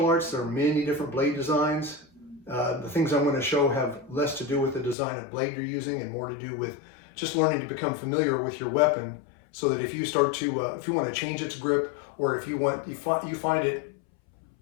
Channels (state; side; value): drops out; right; at 5.0 s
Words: arts, there are many different blade designs. The things I'm going to show have less to do with the design of blade you're using and more to do with just learning to become familiar with your weapon, so that if you start to, if you want to change its grip, or if you find it